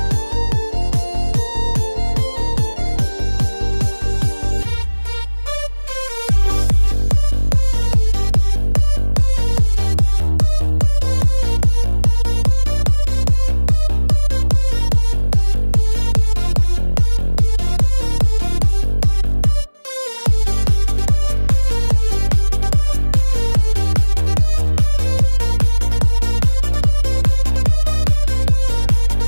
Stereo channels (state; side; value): inverted; both; correlation -1.00